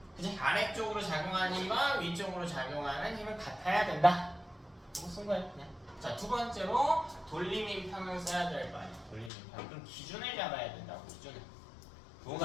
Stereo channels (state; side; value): drops out; right; at 9.3 s